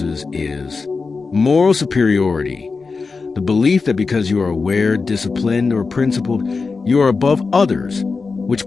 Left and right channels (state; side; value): quieter; right; 4.4 dB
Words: is moral superiority, the belief that because you are aware, disciplined, or principled, you are above others, which